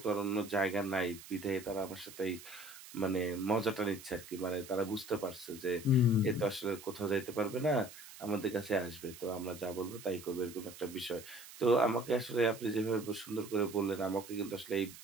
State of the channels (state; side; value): noise; right; hiss, 16 dB below the sound